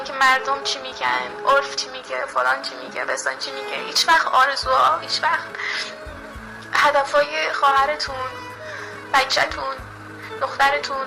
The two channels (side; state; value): both; identical; correlation 1.00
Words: مردم چی میگن، عرف چی میگه، فلان چی میگه، بسان چی میگه، هیچ وقت آرزوها، هیچ وقت هدفهای خواهرتون، بچه‌تون، دخترتون